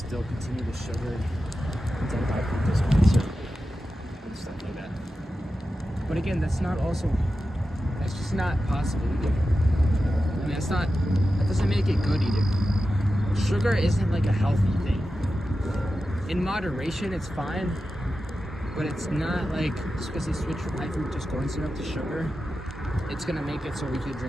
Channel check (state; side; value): normal; both; correlation 0.92